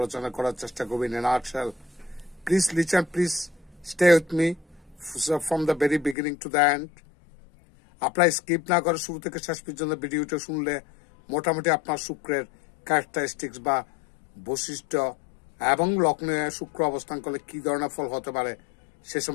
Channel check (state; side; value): drops out; right; at 6.2 s